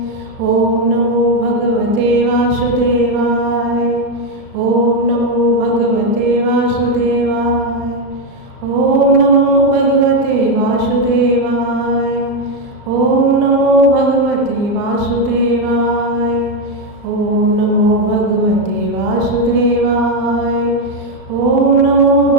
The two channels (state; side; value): late; left; 36 ms